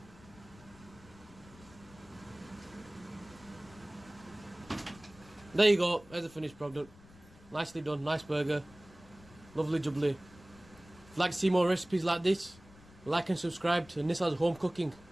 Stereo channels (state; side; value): noise; left; rumble, 23 dB below the sound